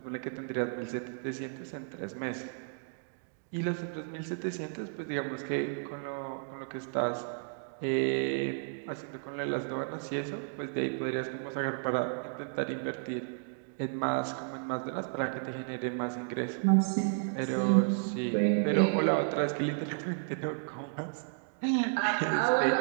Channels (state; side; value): silent; left; digital silence